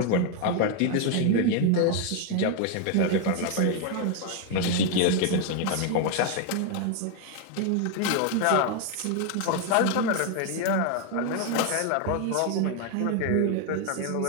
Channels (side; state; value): both; different; correlation 0.01